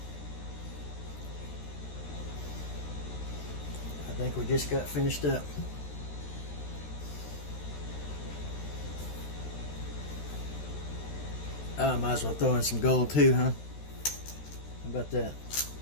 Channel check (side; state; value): right; late; 13 ms